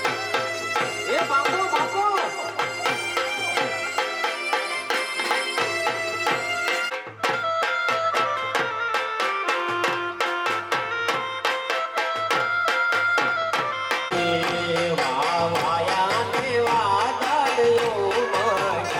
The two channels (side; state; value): both; identical; correlation 1.00